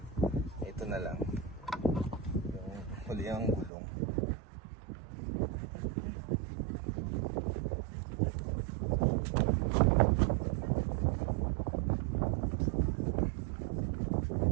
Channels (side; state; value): left; drops out; at 3.7 s